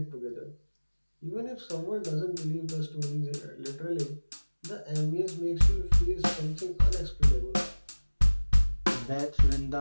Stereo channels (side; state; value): both; inverted; correlation -1.00